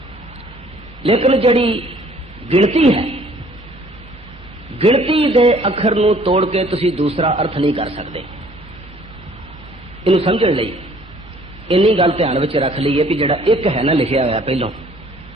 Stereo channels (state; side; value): normal; both; correlation 0.57